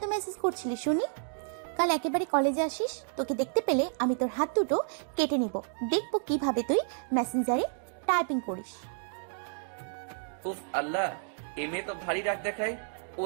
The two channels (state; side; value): silent; left; digital silence